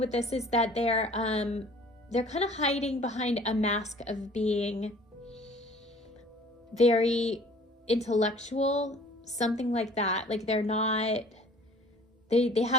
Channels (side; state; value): both; normal; correlation 0.51